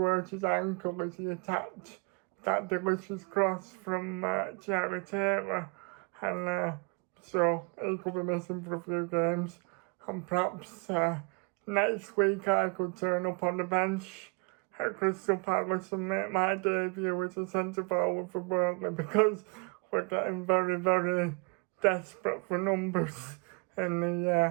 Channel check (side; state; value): left; quieter; 34.6 dB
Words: hurt his ankle as he attacked that delicious cross from Charlie Taylor, and so he could be missing for a few games, and perhaps next week I could turn up on the bench at Crystal Palace and make my debut as a centre forward for Burnley, because we're getting very, very desperate for numbers in